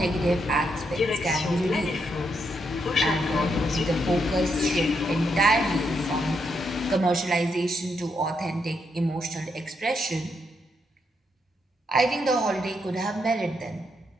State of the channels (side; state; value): both; normal; correlation 0.79